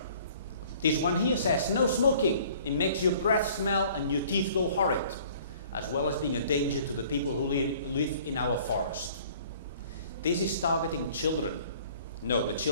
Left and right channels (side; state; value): both; inverted; correlation -0.54